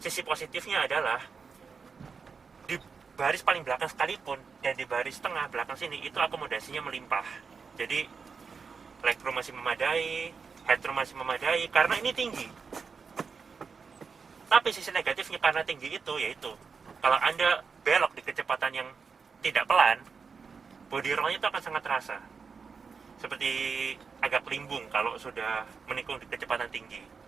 positifnya adalah di baris paling belakang sekalipun dan di baris tengah belakang sini itu akomodasinya melimpah. Jadi legroom masih memadai, headroom masih memadai karena ini tinggi. Tapi sisi negatifnya karena tinggi itu yaitu kalau Anda belok di kecepatan yang tidak pelan, body roll-nya itu akan sangat terasa. Seperti agak limbung kalau sudah menikung di kecepatan tinggi.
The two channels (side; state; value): left; quieter; 5.4 dB